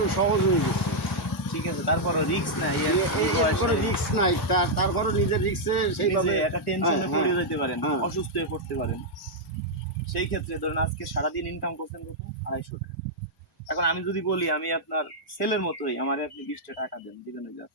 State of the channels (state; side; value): normal; both; correlation -0.04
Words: সহজ হয়ে গেছে। ঠিক আছে, তারপরও রিস্ক নাই, কোনো রিস্ক নাই, তারপরও নিজের রিস্কে সেইভাবে একটা টেনশনে পড়ে যেতে পারেন, হ্যাঁ। অসুস্থ হয়ে পড়তে পারেন। সেই ক্ষেত্রে ধরেন আজকে সারাদিন ইনকাম করছেন কত? 250 টাকা। এখন আমি যদি বলি আমি আপনার ছেলের মতোই, আমারে আপনি 20টা টাকা দেন, দিবেন?